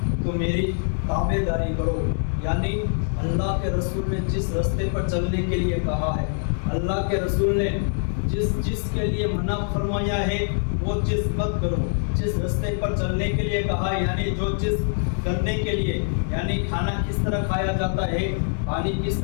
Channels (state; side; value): silent; right; digital silence